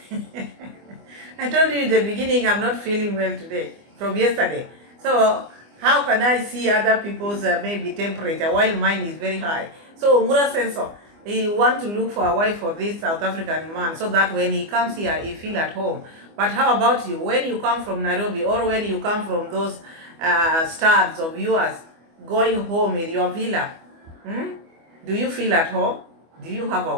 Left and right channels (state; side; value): late; left; 25 ms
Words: I told you in the beginning I'm not feeling well today from yesterday. So how can I see other people's maybe temperature while mine is very high? So Muraseno, he want to look for a wife for this South African man so that when he comes here, he feel at home. But how about you? When you come from Nairobi or when you come from those stars of yours going home in your villa, do you feel at home? Do you have a